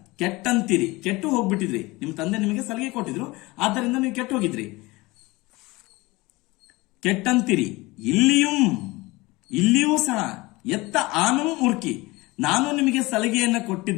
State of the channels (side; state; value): right; quieter; 22.1 dB